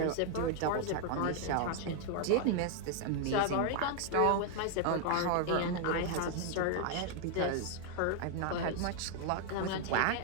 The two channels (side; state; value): both; different; correlation 0.00